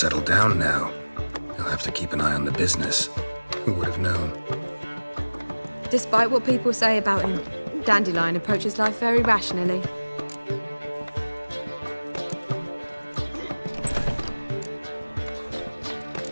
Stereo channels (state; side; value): inverted; both; correlation -1.00